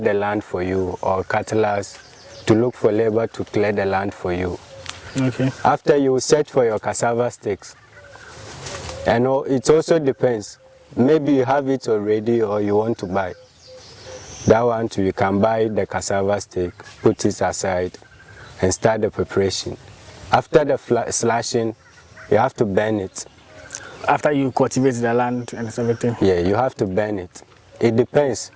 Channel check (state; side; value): identical; both; correlation 1.00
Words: land for you, or cutlass to look for labor to clear the land for you. Okay. After you search for your cassava sticks, and it also depends. Maybe you have it already or you want to buy. That one too, you can buy the cassava stick, put it aside, and start the preparation. After the slashing, you have to burn it. After you cultivate the land and everything? Yeah, you have to burn it. It depends.